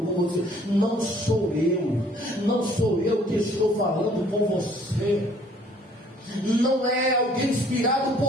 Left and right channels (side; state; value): both; normal; correlation 0.58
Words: com você. Não sou eu que estou falando com você. Não é alguém inspirado